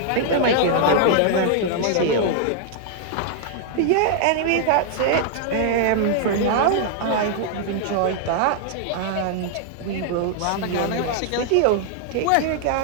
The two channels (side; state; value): both; different; correlation -0.01